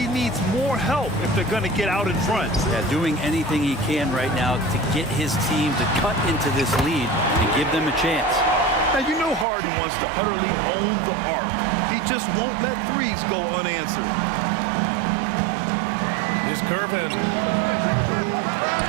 needs more help if they're going to get out in front. Yeah, doing anything he can right now to get his team to cut into this lead and give them a chance. Now, you know Harden wants to utterly own the arc. He just won't let threes go unanswered. Here's Curvin.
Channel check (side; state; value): left; drops out; at 9.5 s